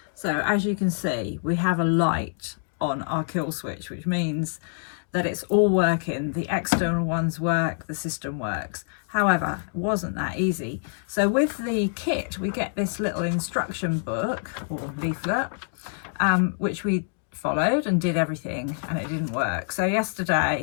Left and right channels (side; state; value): right; silent; digital silence